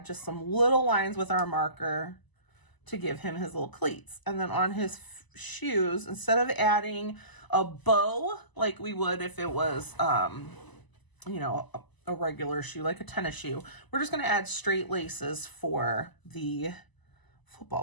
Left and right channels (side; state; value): right; late; 1.0 ms